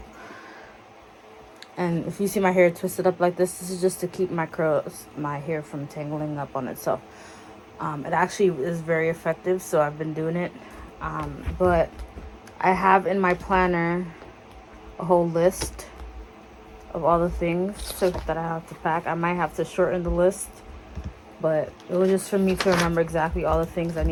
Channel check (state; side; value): identical; both; correlation 1.00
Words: And if you see my hair twisted up like this is just to keep my hair from tangling up on itself. It actually is very effective, so I've been doing it. But I have in my planner a whole list of all the things that I have to pack. I might have to shorten the list, but it was just for me to remember exactly all the things I